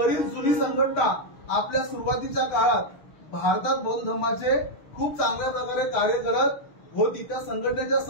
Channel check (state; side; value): late; right; 6.5 ms